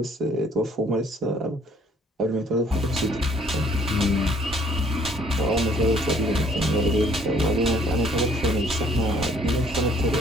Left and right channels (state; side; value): normal; both; correlation 0.60